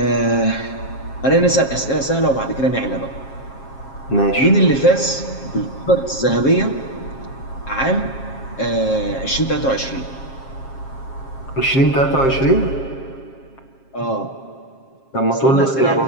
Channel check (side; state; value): right; late; 7.4 ms